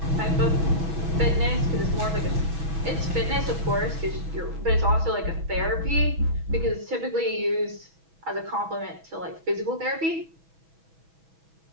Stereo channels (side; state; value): left; late; 6.2 ms